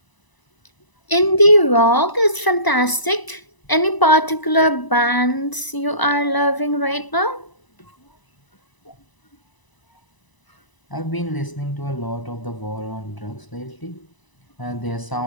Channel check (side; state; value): right; late; 1.0 ms